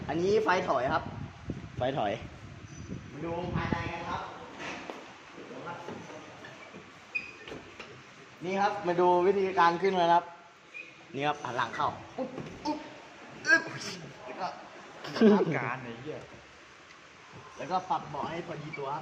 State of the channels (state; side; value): identical; both; correlation 1.00